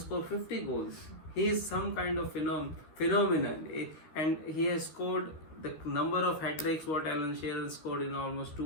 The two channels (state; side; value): late; right; 13 ms